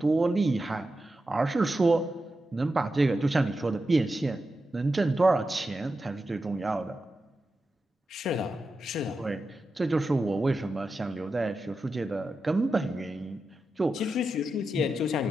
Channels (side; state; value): both; normal; correlation 0.90